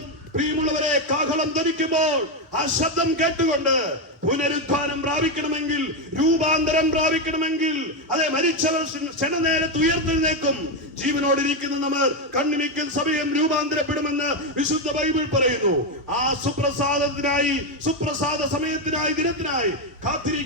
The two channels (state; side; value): normal; both; correlation 0.07